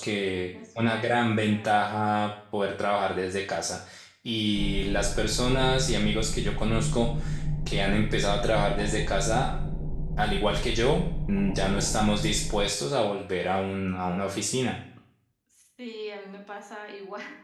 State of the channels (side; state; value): both; identical; correlation 1.00